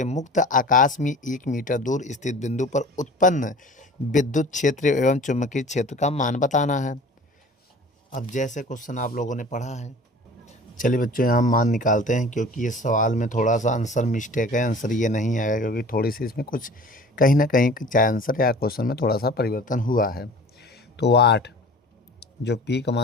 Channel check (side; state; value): both; normal; correlation 0.43